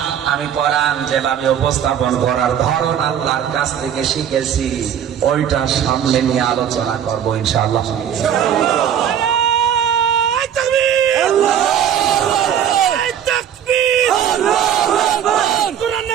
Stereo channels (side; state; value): left; quieter; 9.3 dB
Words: আমি কোরআন যেভাবে উপস্থাপন করার ধরন আল্লাহর কাছ থেকে শিখেছি, ওইটা সামনে নিয়ে আলোচনা করবো ইনশাআল্লাহ।